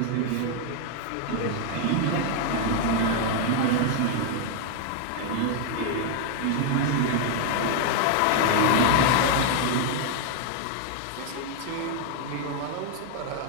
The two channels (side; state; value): both; different; correlation 0.00